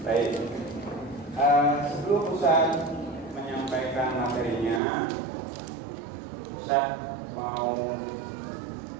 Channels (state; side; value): drops out; left; at 4.8 s